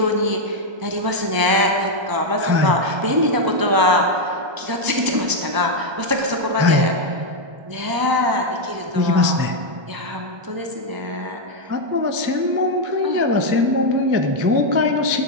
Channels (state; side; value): late; left; 1.0 ms